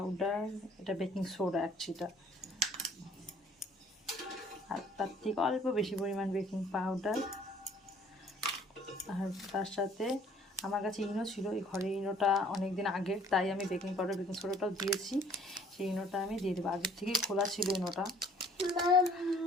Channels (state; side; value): normal; both; correlation 0.57